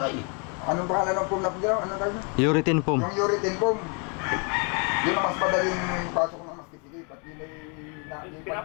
Anong pangalan ng foam na pagyaw? Anong tawag na? Urethane foam. Yung urethane foam. Yun ang mas madaling pasok ng mas kisikip. At yun ay...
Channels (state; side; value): quieter; right; 36.2 dB